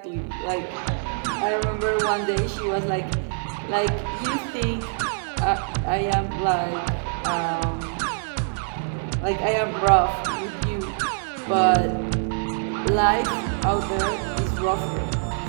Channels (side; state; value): left; silent; 57 dB below the other